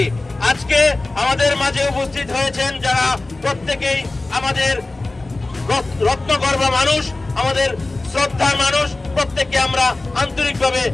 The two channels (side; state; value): right; quieter; 3.1 dB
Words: আজকে আমাদের মাঝে উপস্থিত হয়েছেন যারা প্রত্যেকেই আমাদের রত্নগর্ভ মানুষ, আমাদের শ্রদ্ধার মানুষ, প্রত্যেককে আমরা আন্তরিকভাবে